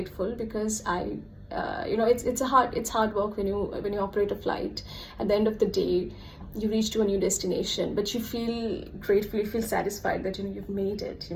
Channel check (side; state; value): both; identical; correlation 1.00